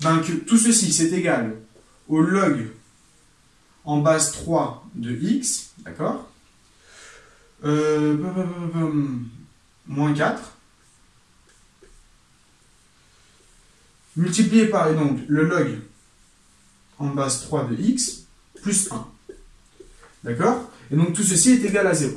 tout ceci, c'est égal au log en base 3 de x, d'accord, moins 4, multiplié par, et donc, le log en base 3 de x, plus 1. D'accord? Et donc, tout ceci est égal à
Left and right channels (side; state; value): both; identical; correlation 1.00